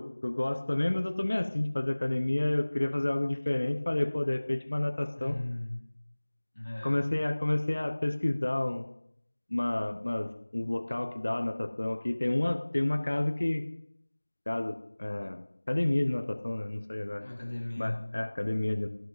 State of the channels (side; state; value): both; inverted; correlation -1.00